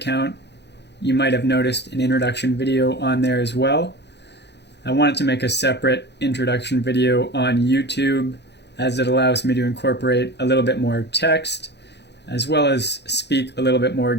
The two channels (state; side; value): late; right; 0.50 ms